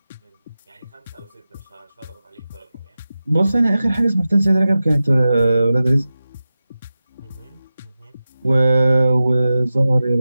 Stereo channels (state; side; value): inverted; both; correlation -0.94